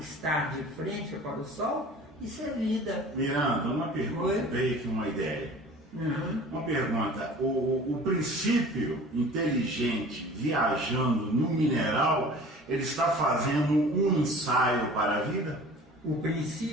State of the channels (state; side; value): normal; both; correlation 0.44